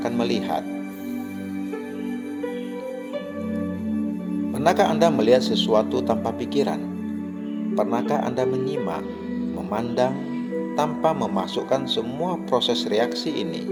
melihat. Pernahkah Anda melihat sesuatu tanpa pikiran? Pernahkah Anda menyimak, memandang, tanpa memasukkan semua proses reaksi ini?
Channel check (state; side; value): identical; both; correlation 1.00